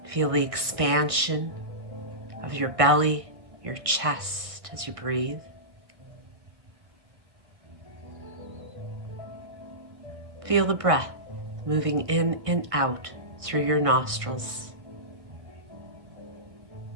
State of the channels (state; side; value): late; left; 1.5 ms